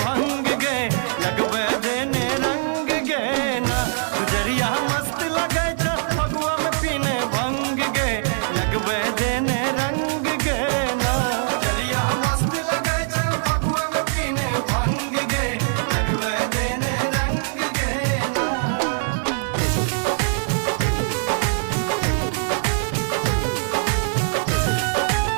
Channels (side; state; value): left; silent; digital silence